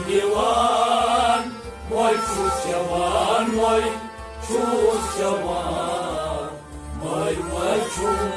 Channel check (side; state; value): both; identical; correlation 1.00